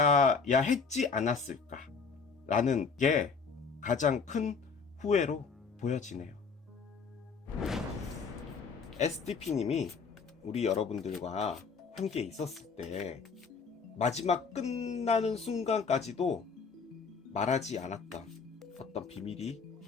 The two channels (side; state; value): right; quieter; 5.2 dB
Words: 했지 않았을까 라는 게 가장 큰 후회로 보여지네요. SDP님이 우리 여러분들과 함께 있었을 때 마지막 끝나는 순간까지도 말하지 않았던 어떤 비밀이